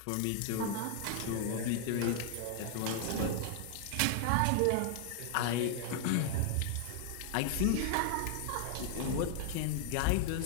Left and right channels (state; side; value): different; both; correlation 0.00